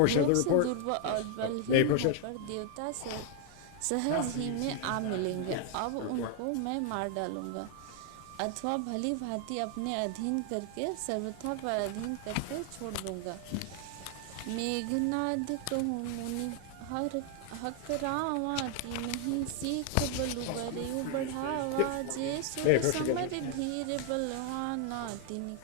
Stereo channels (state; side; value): different; both; correlation 0.00